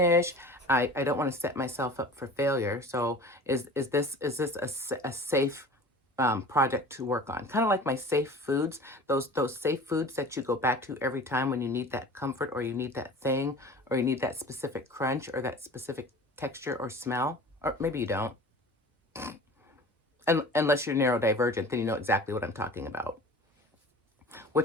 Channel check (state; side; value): normal; both; correlation 0.40